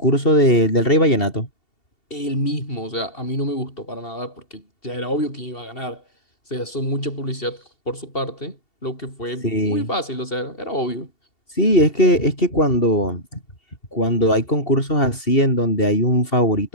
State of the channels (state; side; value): late; right; 2.7 ms